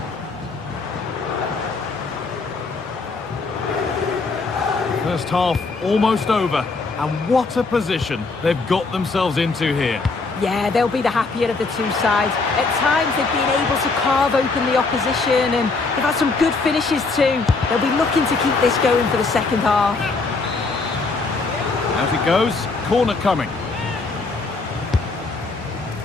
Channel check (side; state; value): right; quieter; 3.9 dB